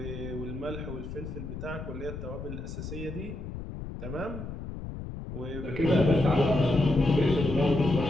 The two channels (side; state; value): left; noise; rumble, 8 dB below the sound